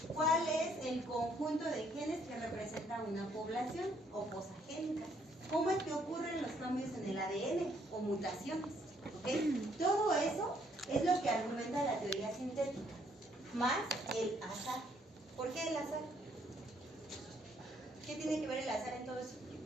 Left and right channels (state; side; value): normal; both; correlation 0.68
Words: ¿Cuál es el conjunto de genes que representa una población o posagénica? ¿Cómo es que ocurren los cambios en el ADN o mutaciones? ¿Okay? Todo eso es lo que argumenta la teoría sintética, más el azar. ¿Por qué el azar? ¿Qué tiene que ver el azar en todo eso?